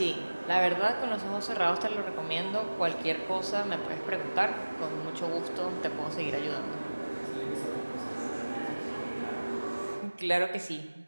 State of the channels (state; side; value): inverted; both; correlation -1.00